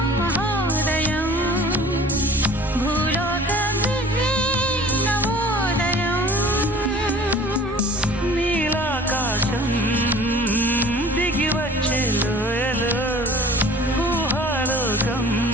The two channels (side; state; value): both; normal; correlation 0.46